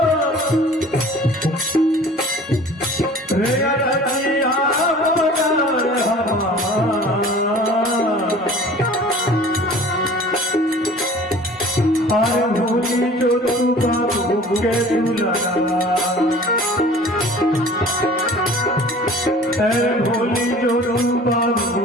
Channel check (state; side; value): normal; both; correlation 0.46